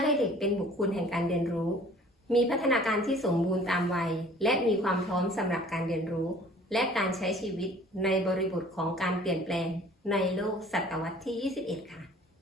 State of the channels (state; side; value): normal; both; correlation 0.51